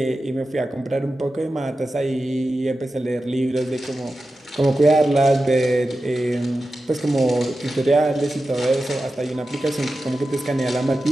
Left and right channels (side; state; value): both; normal; correlation 0.92